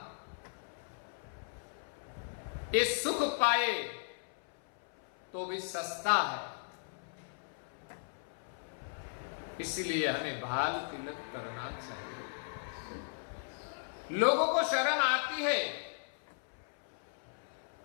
ये सुख पाए तो भी सस्ता है, इसलिए हमें बाल तिलक करना चाहिए। लोगों को शर्म आती है,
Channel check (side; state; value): right; silent; 53 dB below the other